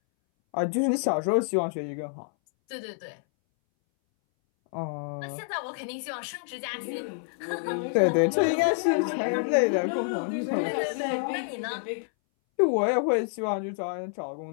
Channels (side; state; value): right; silent; 59 dB below the other